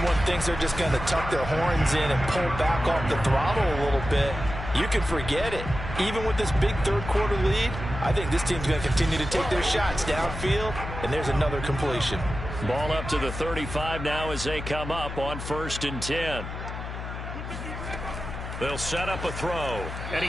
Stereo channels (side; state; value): left; noise; hum, 8 dB below the sound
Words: thinks they're just going to tuck their horns in and pull back off the throttle a little bit, you can forget it. Even with this big third quarter lead, I think this team's going to continue to take their shots downfield, and there's another completion. Ball up to the 35 now as they come up on 1st and 10. They'll set up a throw, and